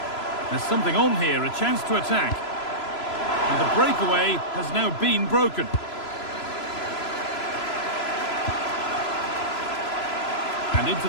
There's something on here, a chance to attack. And the breakaway has now been broken. And into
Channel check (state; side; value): late; right; 3.0 ms